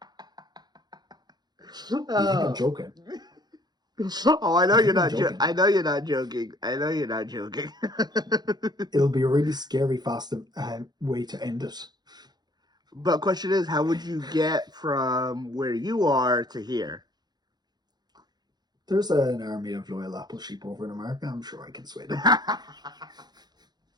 You think I'm oh. joking? Oh, I know You you're think I'm not. joking? I know you're not joking. I know you're not joking. It'll be a really scary, fast way to end it. But question is, how would you get from where you are to here? There's an army of loyal Apple sheep over in America. I'm sure I can sway them.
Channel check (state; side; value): late; left; 0.20 ms